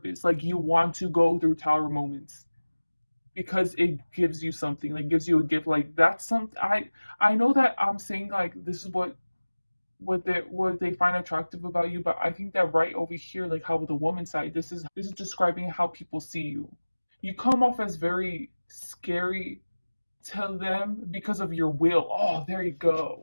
Like you want to go through tower moments because it gives you something, like gives you a gift. Like that's something I know that I'm saying like this is what they find attractive about you, but I think that right over here, like how with the woman side, this is describing how people see you. You come off as very scary to them because of your will. Oh, there you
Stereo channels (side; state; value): both; inverted; correlation -1.00